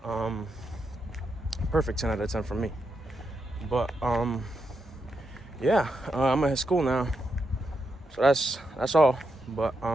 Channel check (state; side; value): normal; both; correlation 0.84